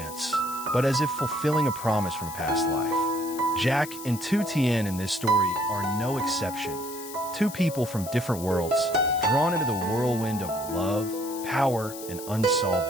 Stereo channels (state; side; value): noise; left; hiss, 13 dB below the sound